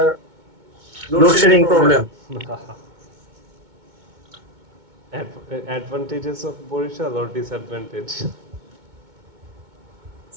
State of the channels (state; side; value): late; left; 2.2 ms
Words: load shedding problem. Advantages of Borishal or disadvantage?